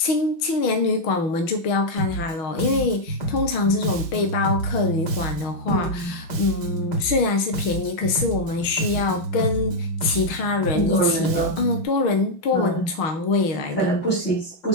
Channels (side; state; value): right; late; 6.3 ms